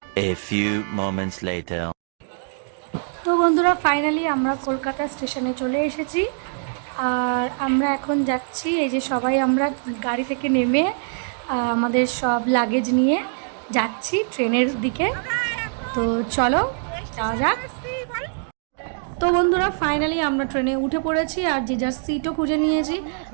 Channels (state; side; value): silent; left; digital silence